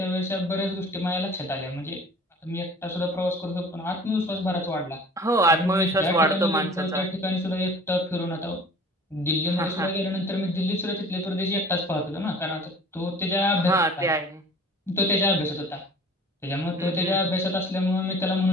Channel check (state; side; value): normal; both; correlation 0.47